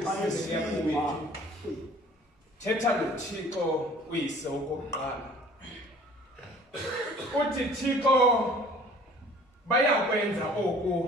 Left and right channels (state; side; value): normal; both; correlation 0.50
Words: siyakuyithu. Thetha noThixo uyise okokuqala. Uthi Thixo bayakwenza